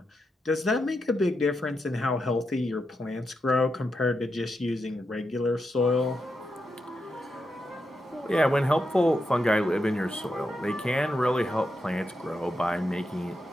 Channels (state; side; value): normal; both; correlation 0.85